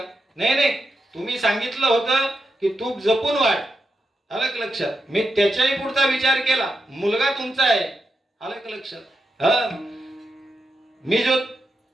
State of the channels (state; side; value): normal; both; correlation 0.86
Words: नाही, तुम्ही सांगितलं होतं की तूप जपून वाढ. आलं का लक्षात? मी त्याच्याही पुढचा विचार केला, मुलगा तुमचा आहे. आलं का लक्षात? मी जो